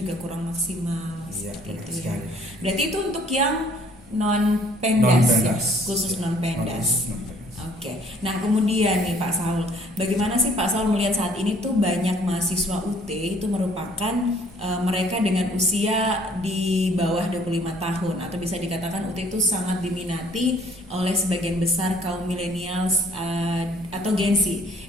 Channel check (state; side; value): normal; both; correlation 0.58